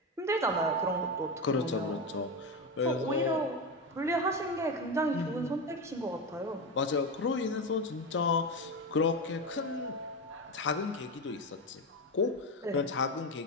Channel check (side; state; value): both; normal; correlation 0.17